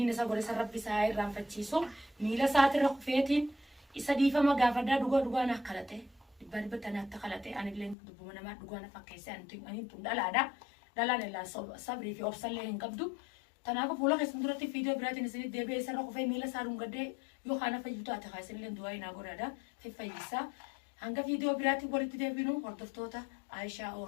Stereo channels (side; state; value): right; drops out; at 8.0 s